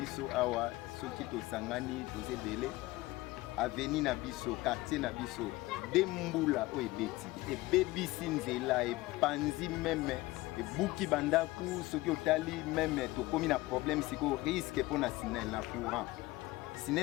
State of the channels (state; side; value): quieter; right; 19.4 dB